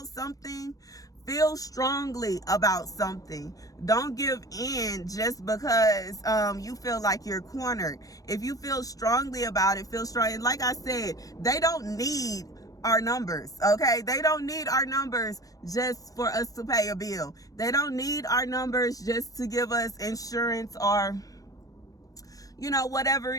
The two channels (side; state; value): right; late; 0.17 ms